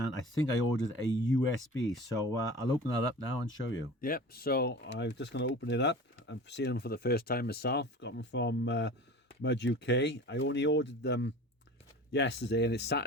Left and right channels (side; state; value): both; normal; correlation 0.38